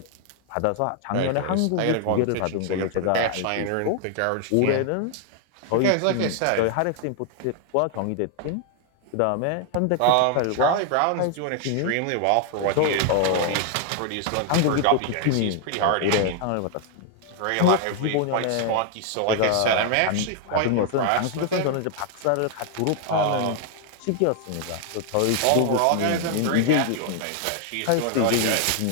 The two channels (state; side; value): different; both; correlation 0.00